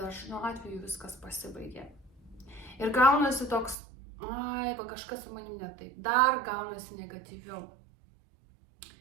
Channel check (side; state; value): left; drops out; at 3.8 s